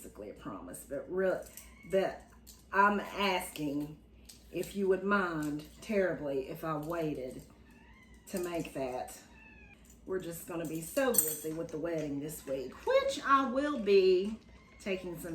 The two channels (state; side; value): identical; both; correlation 1.00